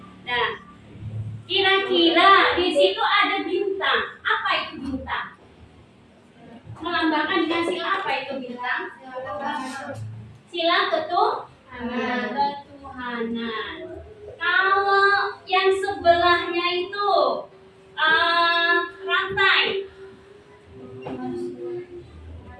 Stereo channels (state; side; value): identical; both; correlation 1.00